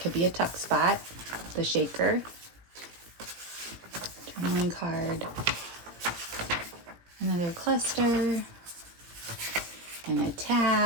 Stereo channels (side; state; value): left; late; 17 ms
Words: be a tuck spot, the shaker, journaling card, another cluster, and a